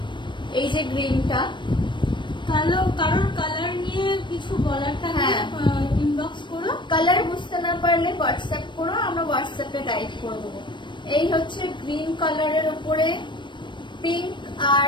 এই যে গ্রিনটা, কারোর কালার নিয়ে কিছু বলার থাকলে ইনবক্স করো। কালার বুঝতে না পারলে হোয়াটসঅ্যাপ করো, আমরা হোয়াটসঅ্যাপে গাইড করে দেবো। এই হচ্ছে গ্রিন কালারের উপরে পিঙ্ক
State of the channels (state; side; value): late; right; 0.22 ms